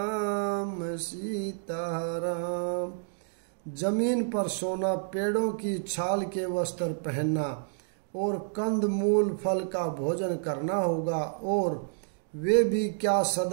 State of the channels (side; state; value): left; silent; digital silence